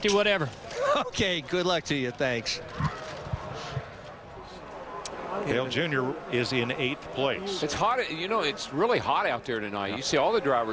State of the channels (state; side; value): identical; both; correlation 1.00